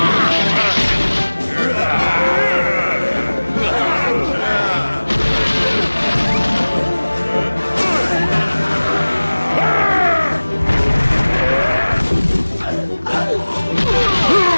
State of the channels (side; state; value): both; inverted; correlation -1.00